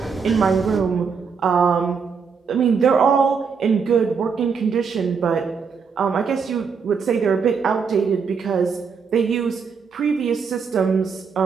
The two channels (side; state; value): left; quieter; 5.8 dB